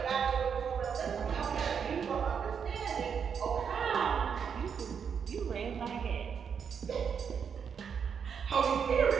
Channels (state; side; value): quieter; left; 7.0 dB